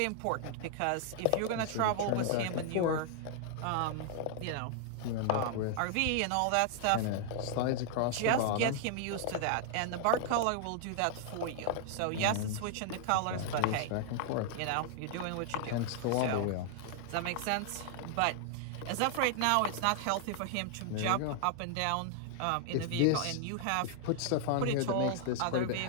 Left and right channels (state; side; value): different; both; correlation 0.00